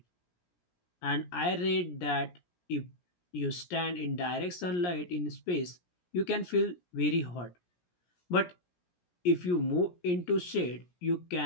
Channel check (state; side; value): late; right; 17 ms